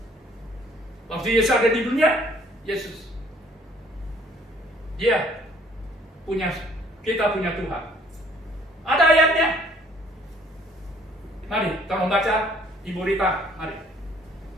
waktu Yesus ada di dunia, Yesus kita punya Tuhan. Ada ayatnya. Mari, tolong baca Ibu Rita, mari.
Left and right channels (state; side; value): normal; both; correlation 0.60